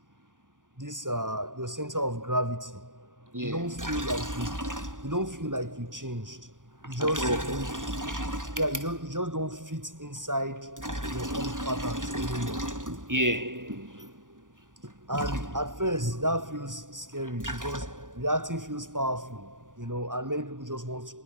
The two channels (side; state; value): left; late; 0.88 ms